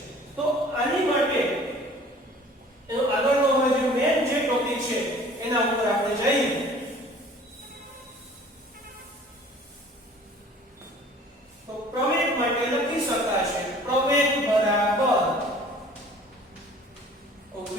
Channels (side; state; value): both; normal; correlation 0.49